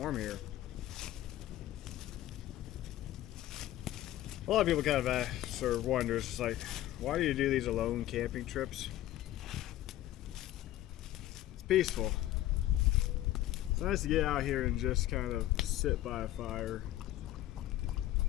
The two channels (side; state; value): right; quieter; 14.4 dB